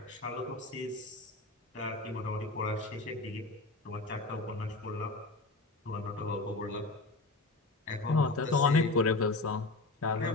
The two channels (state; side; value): quieter; right; 3.2 dB